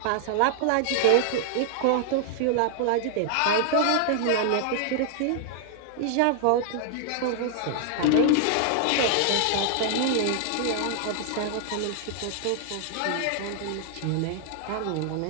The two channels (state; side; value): different; both; correlation -0.01